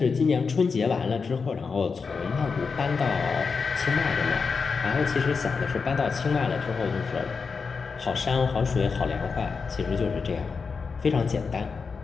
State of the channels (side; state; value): right; quieter; 5.1 dB